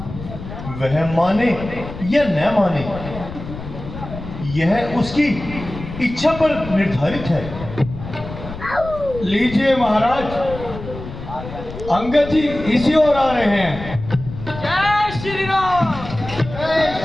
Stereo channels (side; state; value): left; noise; rumble, 11 dB below the sound